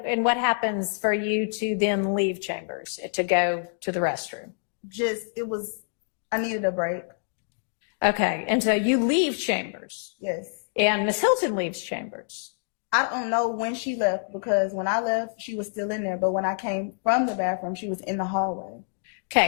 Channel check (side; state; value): right; silent; digital silence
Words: what happens for you to then leave chambers to go to the restroom? I needed a break. Okay, and so you leave chambers. Yes. And Miss Hilton leaves chambers. I don't know when she left, because when I left, she was still in there. But when I came from the bathroom, she was in the hallway.